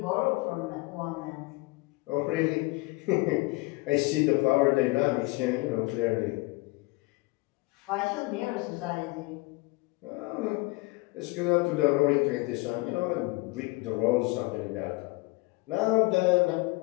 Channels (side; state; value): right; quieter; 24.0 dB